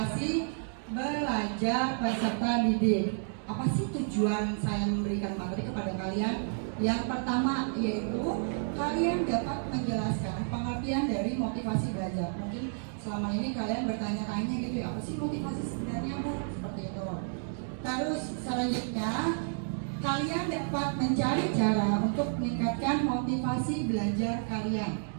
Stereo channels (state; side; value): silent; left; digital silence